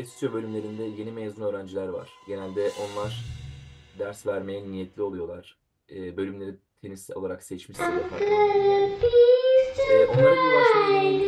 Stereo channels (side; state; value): both; identical; correlation 1.00